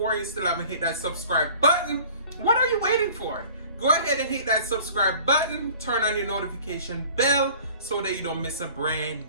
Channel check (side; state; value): both; inverted; correlation -0.47